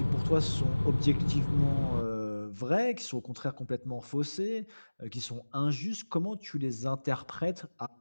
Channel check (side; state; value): both; inverted; correlation -1.00